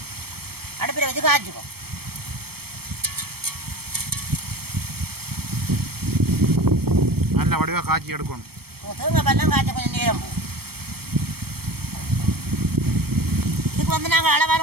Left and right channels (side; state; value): left; late; 0.96 ms